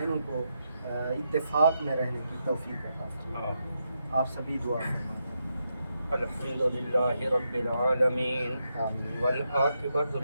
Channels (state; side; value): inverted; both; correlation -0.84